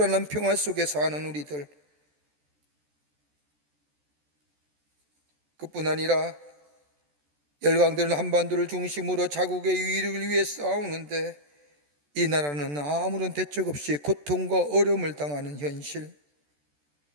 평화 속에 사는 우리들, 그뿐 아니라 열강들은 한반도를 중심으로 자국의 유일을 위해 싸우는데 이 나라는 아무런 대책 없이 고통과 어려움을 당하는 현실,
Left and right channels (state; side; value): late; left; 14 ms